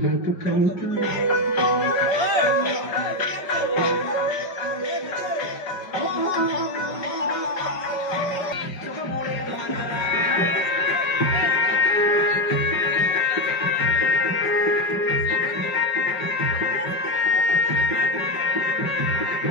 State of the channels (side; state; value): right; late; 5.4 ms